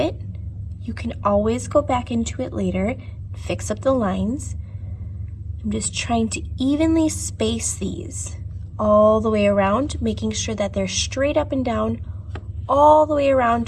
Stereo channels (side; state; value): both; identical; correlation 1.00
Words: You can always go back into it later, fix up the lines. I'm just trying to evenly space these all the way around, making sure that they're straight up and down all the way